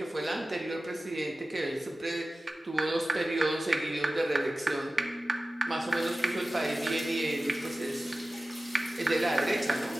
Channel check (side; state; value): both; normal; correlation 0.96